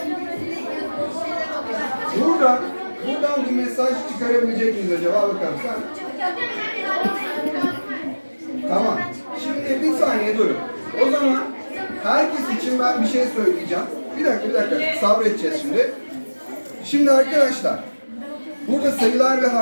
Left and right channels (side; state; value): both; inverted; correlation -1.00